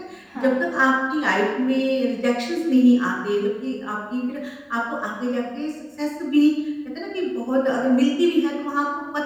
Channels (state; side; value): identical; both; correlation 1.00